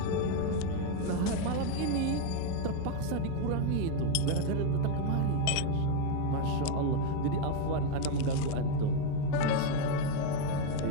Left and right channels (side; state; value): both; different; correlation 0.01